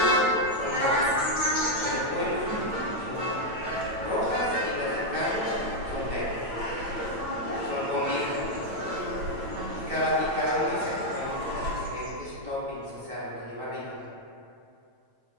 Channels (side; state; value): left; late; 9.0 ms